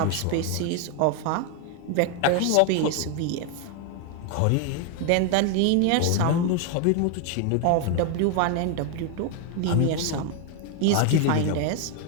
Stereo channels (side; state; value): both; different; correlation 0.01